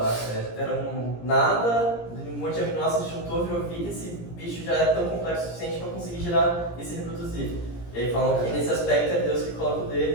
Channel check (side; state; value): right; late; 17 ms